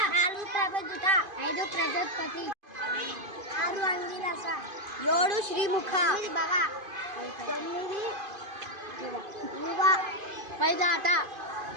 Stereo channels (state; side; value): late; left; 2.5 ms